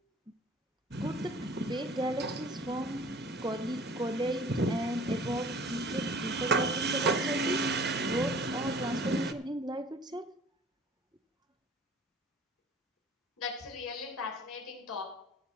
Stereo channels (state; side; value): normal; both; correlation 0.48